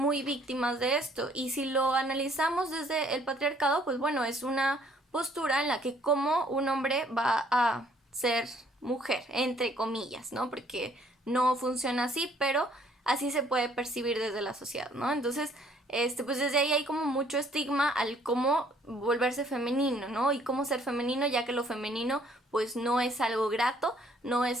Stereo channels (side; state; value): both; normal; correlation 0.62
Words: víctimas de esto. Y si lo analizamos desde el patriarcado, pues bueno, es una postura en la que como un hombre va a ser mujer, entre comillas, ¿no? Porque no funciona así, pero así se puede percibir desde la sociedad, ¿no? Entonces, pues desde ahí hay como mucho estigma al cómo volverse femenino, ¿no? Y cómo ser femenino, ya que lo femenino pues no es algo grato, no